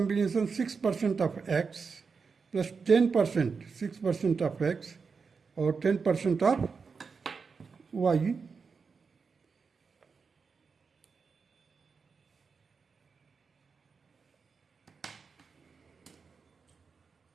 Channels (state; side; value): quieter; left; 5.2 dB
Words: 6% of X plus 10%, 6% of X or 10% of Y.